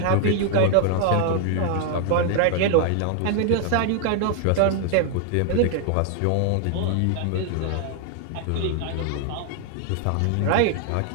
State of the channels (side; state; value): both; different; correlation 0.00